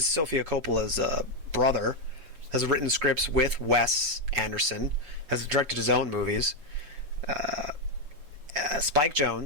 Sofia Coppola's brother, has written scripts with Wes Anderson, has directed his own movies. Spike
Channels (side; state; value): left; late; 6.8 ms